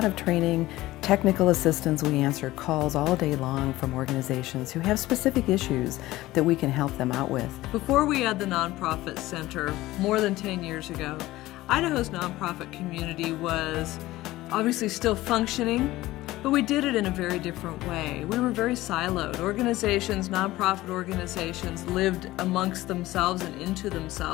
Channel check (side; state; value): right; quieter; 17.3 dB